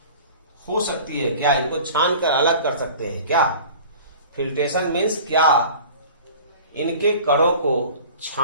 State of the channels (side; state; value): both; inverted; correlation -0.42